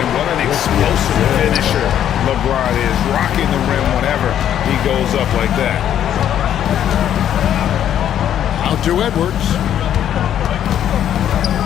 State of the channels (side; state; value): right; quieter; 10.3 dB